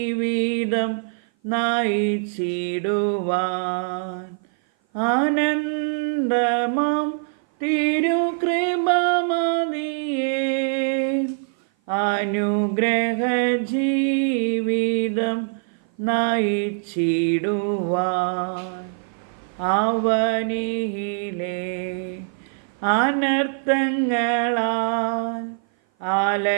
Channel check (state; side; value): silent; left; 56 dB below the other